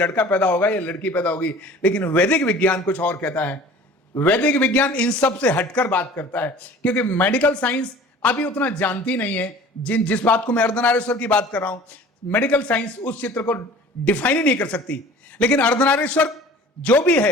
पैदा होगा या लड़की पैदा होगी। लेकिन वैदिक विज्ञान कुछ और कहता है। वैदिक विज्ञान इन सब से हटकर बात करता है, क्योंकि मेडिकल साइंस अभी उतना जानती नहीं है। जिस बात को मैं अर्धनारीश्वर की बात कर रहा हूं, मेडिकल साइंस उस चित्र को डिफाइन ही नहीं कर सकती। लेकिन अर्धनारीश्वर जो भी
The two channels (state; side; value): normal; both; correlation 0.45